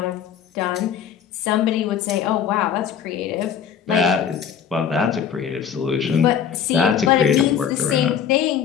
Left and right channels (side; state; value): right; quieter; 8.2 dB